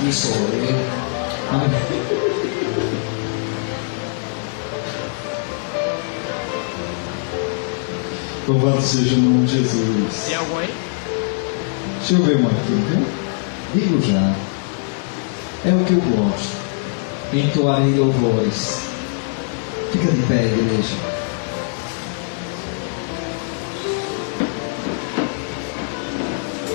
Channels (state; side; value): silent; right; digital silence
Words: sou eu. Amém. Louvado seja o nome de Jesus. Tem algum aí? Deixa eu ver uma aqui, viu? Digo já. É o que eu gosto. Entoarei louvores. Fica de pé, igreja.